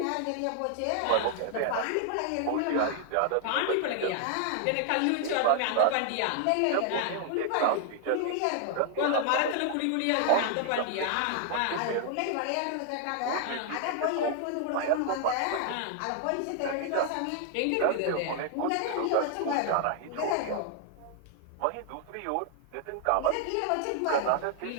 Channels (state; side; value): different; both; correlation 0.00